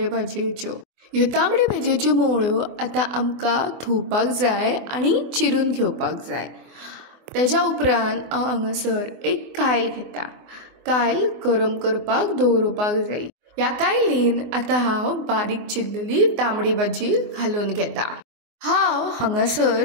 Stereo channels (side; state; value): left; late; 24 ms